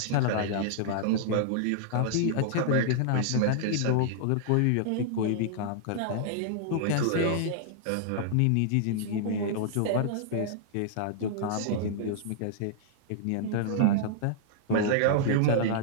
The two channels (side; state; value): both; different; correlation -0.01